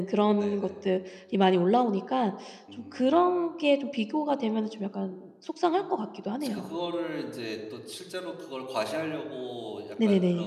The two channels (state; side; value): identical; both; correlation 1.00